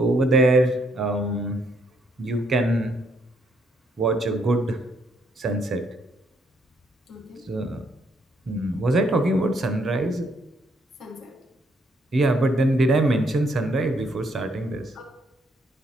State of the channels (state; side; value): normal; both; correlation 0.72